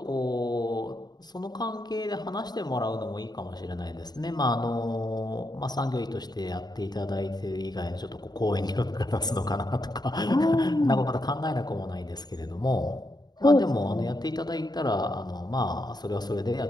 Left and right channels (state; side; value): late; right; 0.20 ms